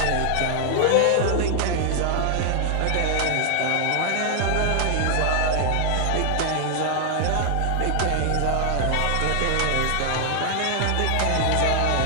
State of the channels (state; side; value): different; both; correlation 0.00